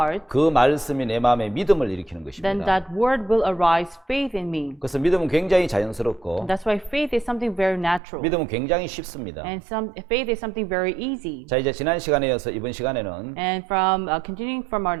그 말씀이 내 마음에 믿음을 일으키는 then 것입니다. that word will arise faith in me. 그래서 믿음은 굉장히 자연스럽고 That's why faith is something very natural. 믿음은 굉장히 쉽습니다. And faith is something very easy. 자, 이제 지난 시간에 이어서 이번 시간에는 And from continuing from our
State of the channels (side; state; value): left; drops out; at 8.0 s